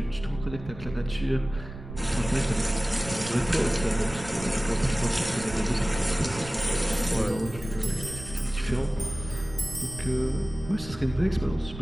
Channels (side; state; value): right; noise; rumble, 12 dB below the sound